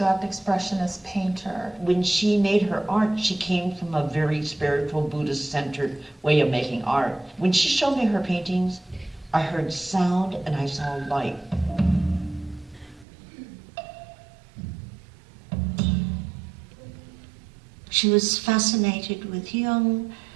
expressionist painter. When she made her art, she came from a very spiritual, Buddhist-centered way of making art. When she showed me her paintings, I heard sound and I saw light. She was fascinated with Jung,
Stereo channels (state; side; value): drops out; left; at 13.1 s